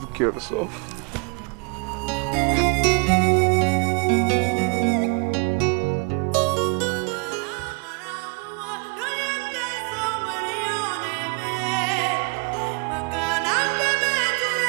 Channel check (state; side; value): quieter; left; 34.1 dB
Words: care of yourself.